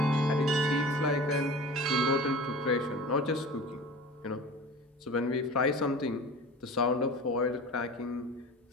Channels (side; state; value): both; normal; correlation 0.37